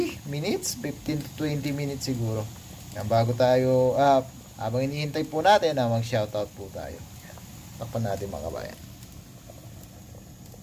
minutes, 15 to 20 minutes siguro. Yan, bago tayo, habang inihintay po natin, mag-shoutout po tayo. Yan. Takpan natin mga kabayan.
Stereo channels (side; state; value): both; identical; correlation 1.00